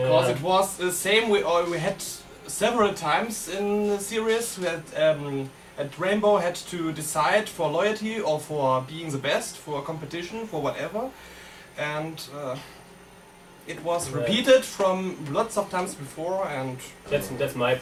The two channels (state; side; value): identical; both; correlation 1.00